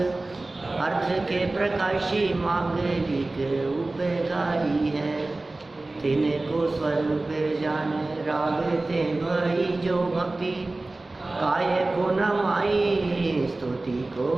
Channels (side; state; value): left; quieter; 3.0 dB